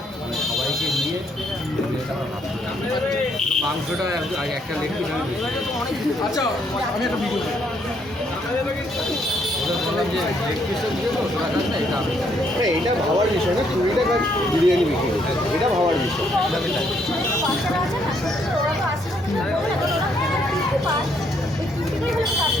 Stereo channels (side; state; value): both; normal; correlation 0.71